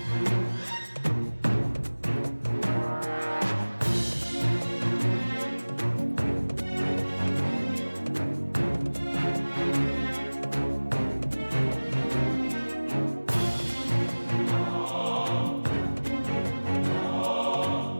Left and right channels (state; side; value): inverted; both; correlation -1.00